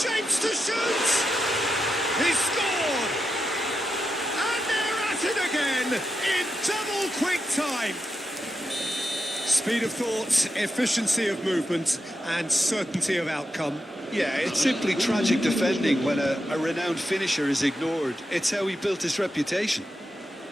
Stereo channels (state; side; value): normal; both; correlation 0.87